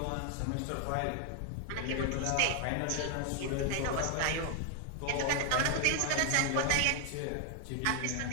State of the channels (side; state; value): both; different; correlation 0.00